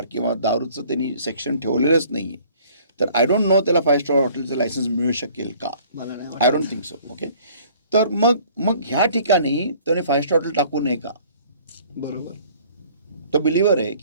किंवा दारूचं त्यांनी सेक्शन ठेवलेलंच नाही आहे, तर आय डोंट नो त्याला 5 स्टार हॉटेलचं लायसन्स मिळू शकेल का? मला नाही आय वाटत. Don't think so. ओके, तर मग ह्या ठिकाणी त्याने 5 स्टार हॉटेल टाकू नये का? बरोबर. तो बिलिव्हर आहे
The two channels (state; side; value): inverted; both; correlation -0.54